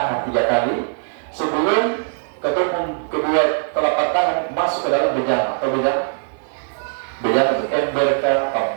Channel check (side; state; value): left; silent; digital silence